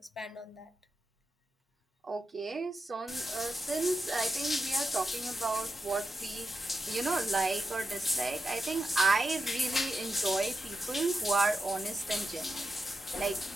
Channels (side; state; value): both; normal; correlation 0.90